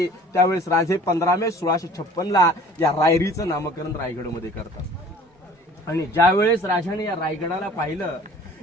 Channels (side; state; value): both; normal; correlation 0.49